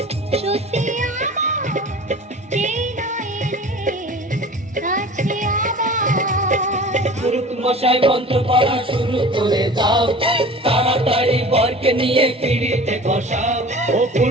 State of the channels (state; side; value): normal; both; correlation 0.41